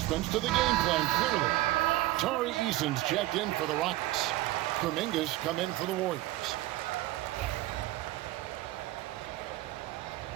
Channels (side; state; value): left; quieter; 16.8 dB